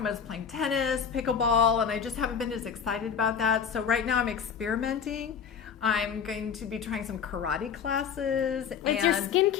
I was playing tennis, pickleball, and I just haven't been as excited about that. So right now I'm experimenting. I'm going to be trying some karate classes. It's your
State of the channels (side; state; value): right; quieter; 7.0 dB